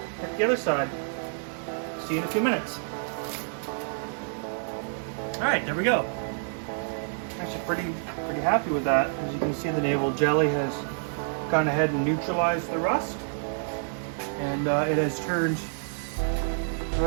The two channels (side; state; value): left; silent; 56 dB below the other